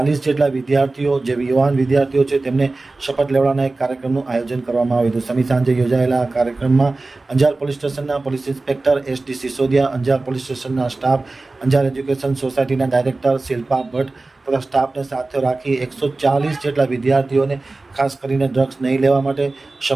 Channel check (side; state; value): left; quieter; 3.3 dB